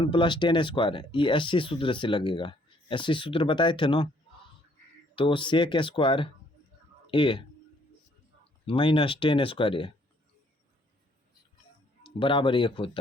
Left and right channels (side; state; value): both; normal; correlation 0.64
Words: + tan स्क्वायर ये एससी सूत्र से लगेगा, एससी सूत्र बताए थे ना, तो सेक स्क्वायर ए माइनस tan स्क्वायर ए बराबर 1